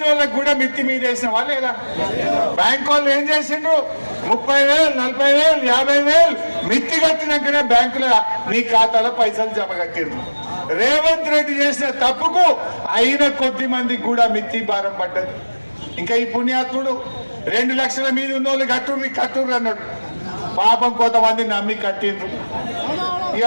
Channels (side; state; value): both; inverted; correlation -1.00